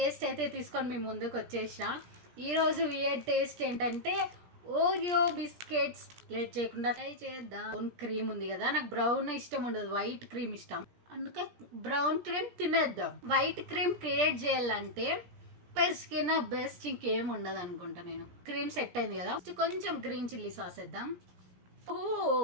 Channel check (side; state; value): left; late; 17 ms